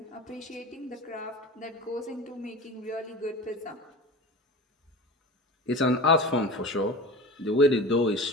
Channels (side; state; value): both; normal; correlation 0.33